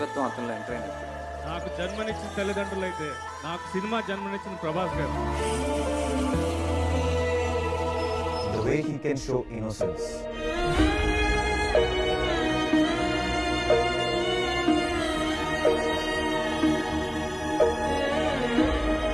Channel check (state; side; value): identical; both; correlation 1.00